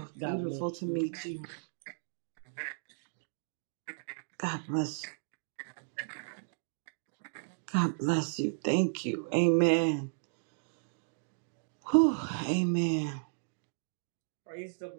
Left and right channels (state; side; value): silent; left; digital silence